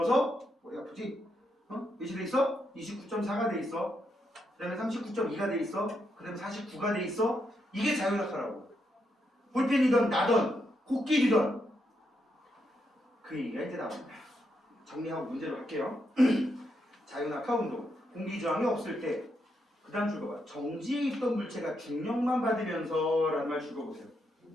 머리 아프지? 몇이 돼 있어? 29.4가 돼 있어. 그 다음에 39.2가 돼 있어. 그 다음에 49가 돼 있어. 이게 자유낙하라고. 볼펜이든 나든 코끼리든 그 얘기가 이제 나옵니다. 정리하고 문제로 할게요. 자유낙하 운동 공기저항이 없을 때 그 다음 줄 봐봐. 정지에 있던 물체가 중력만 받으면서 라는 말 줄거보세요.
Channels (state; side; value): normal; both; correlation 0.80